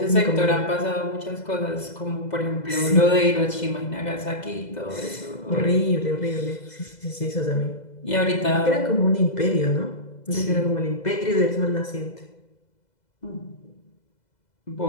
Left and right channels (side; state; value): right; late; 2.0 ms